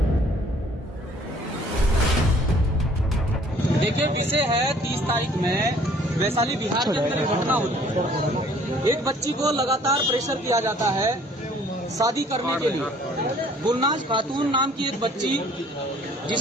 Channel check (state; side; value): normal; both; correlation 0.57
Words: देखिए, विषय है 30 तारीख में वैशाली बिहार के अंदर घटना हुई। एक बच्ची को लगातार प्रेशर किया जाता है शादी करने के लिए। गुलनाज खातून नाम की एक बच्ची,